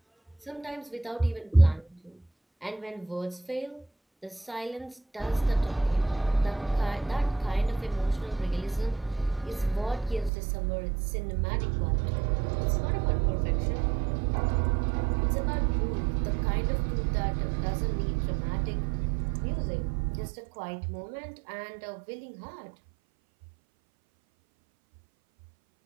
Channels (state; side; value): drops out; left; at 10.3 s